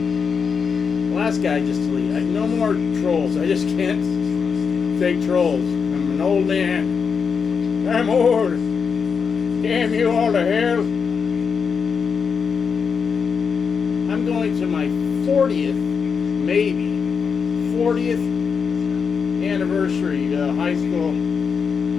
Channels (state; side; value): quieter; right; 6.0 dB